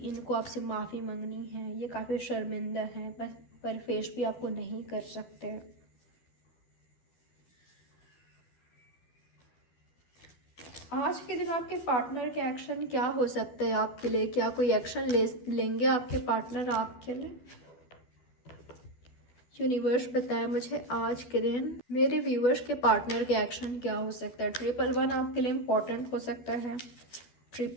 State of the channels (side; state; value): right; late; 12 ms